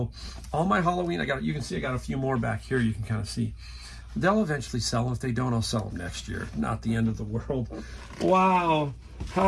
all my Halloween, you can see I got a few more back here. You can kind of see. They'll eventually sell them. If they don't, I'll sell them next year. Not the end of the world. Wow.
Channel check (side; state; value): both; identical; correlation 1.00